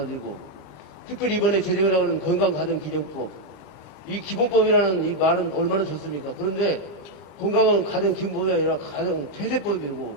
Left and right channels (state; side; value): late; right; 34 ms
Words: 특별히 이번에 제정을 나오는 건강가정기본법, 이 기본법이라는 이 말은 얼마나 좋습니까? 그런데 건강은 가정기본법이 아니라 가정폐쇄법이고